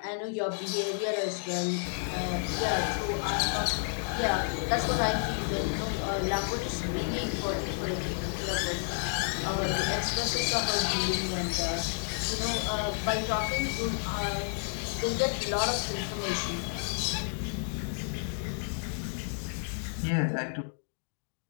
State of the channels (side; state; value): right; silent; digital silence